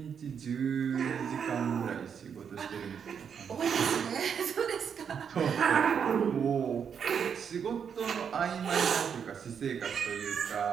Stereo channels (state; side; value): quieter; left; 7.3 dB